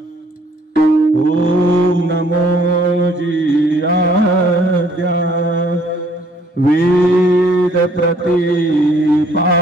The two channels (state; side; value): normal; both; correlation 0.62